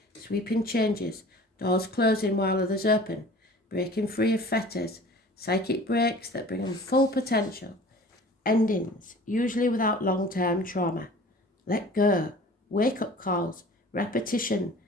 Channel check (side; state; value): both; normal; correlation 0.44